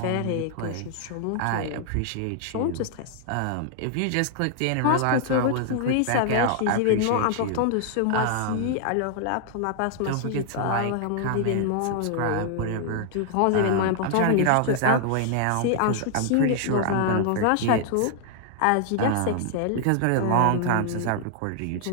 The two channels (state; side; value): different; both; correlation 0.00